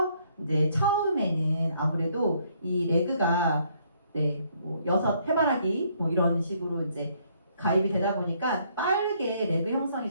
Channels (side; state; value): both; inverted; correlation -0.68